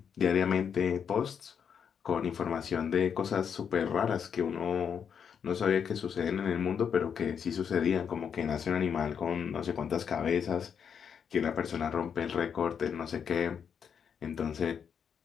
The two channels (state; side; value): quieter; right; 7.4 dB